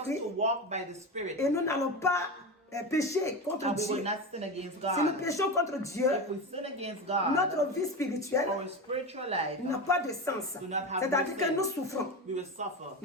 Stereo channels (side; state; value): both; normal; correlation 0.22